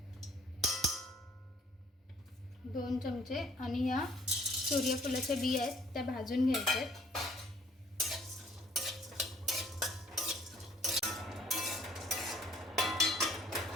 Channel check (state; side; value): normal; both; correlation 0.58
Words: दोन चमचे. आणि ह्या सूर्यफुलाच्या बिया आहेत त्या भाजून घ्यायच्या आहेत.